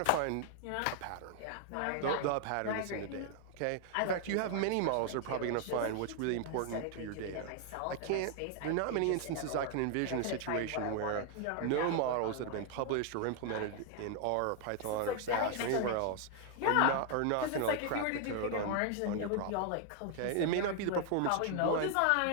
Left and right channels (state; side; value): different; both; correlation 0.00